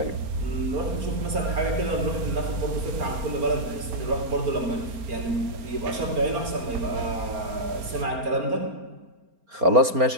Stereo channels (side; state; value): left; late; 4.3 ms